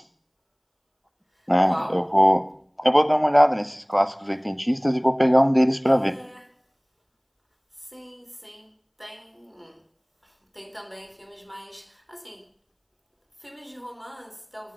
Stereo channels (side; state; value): both; identical; correlation 1.00